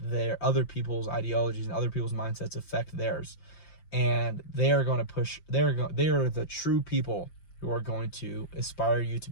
other people's ideologies and other people's mindsets affect theirs. And they are going to push. They are the true people who are going to aspire you to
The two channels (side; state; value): right; late; 5.7 ms